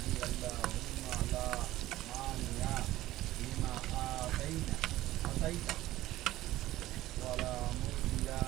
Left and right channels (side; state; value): left; quieter; 15.6 dB